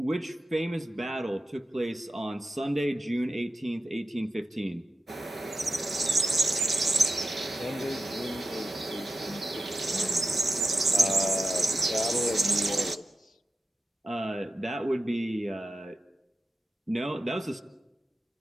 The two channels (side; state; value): both; normal; correlation 0.91